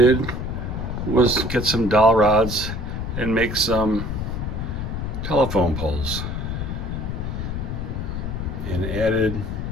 was get some dowel rods and make some telephone poles, and added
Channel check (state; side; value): noise; left; rumble, 4 dB below the sound